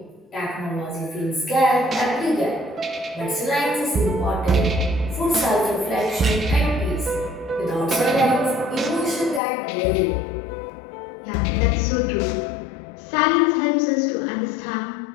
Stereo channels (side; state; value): right; drops out; at 9.4 s